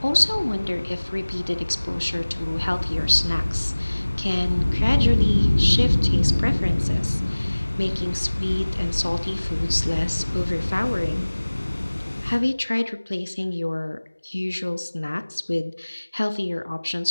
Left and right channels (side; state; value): both; inverted; correlation -1.00